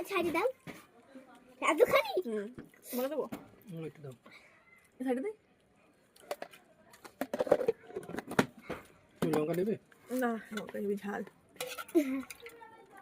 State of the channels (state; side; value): identical; both; correlation 1.00